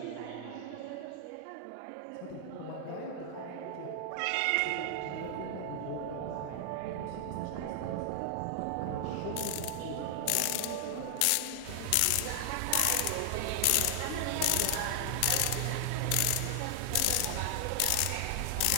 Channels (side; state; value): both; different; correlation 0.00